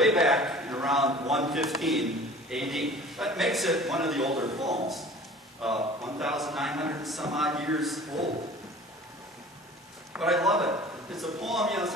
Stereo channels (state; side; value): normal; both; correlation 0.44